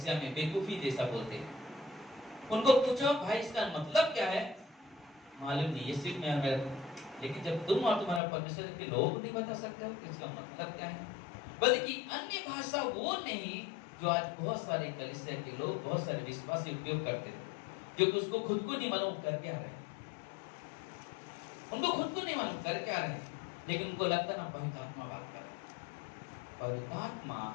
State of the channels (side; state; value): right; drops out; at 8.2 s